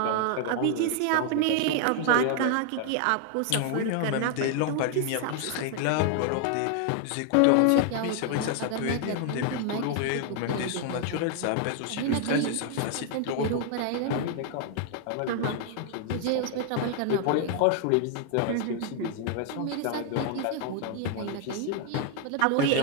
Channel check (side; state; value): both; different; correlation 0.00